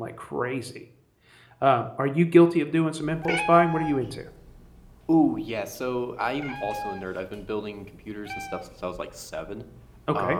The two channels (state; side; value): identical; both; correlation 1.00